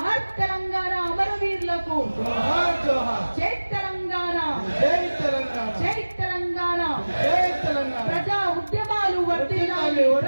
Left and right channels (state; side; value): inverted; both; correlation -1.00